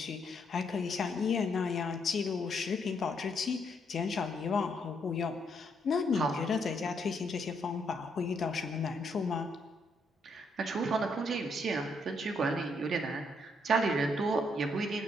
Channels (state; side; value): normal; both; correlation 0.74